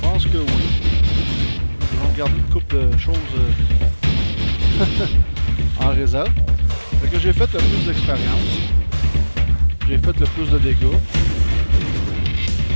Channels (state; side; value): inverted; both; correlation -1.00